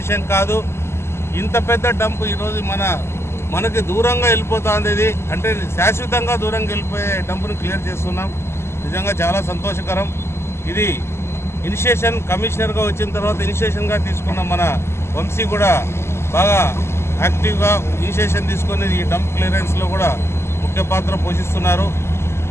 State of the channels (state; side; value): late; right; 0.12 ms